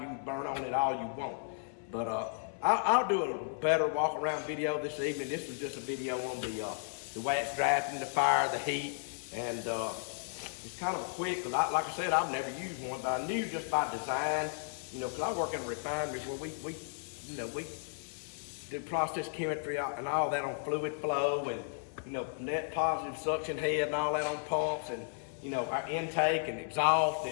You can burn on it all you want. But I'll do a better walk around video this evening. This was just a video on the way it's drafting, the fire, the heat, and it's kind of a quick. Like I said, I've never used one, but I knew just by design, because I work in a refinery where we do process chemistry and all that on fluid flow and net positive suction head and all that on pumps and our intake and exhaust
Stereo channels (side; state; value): right; silent; 55 dB below the other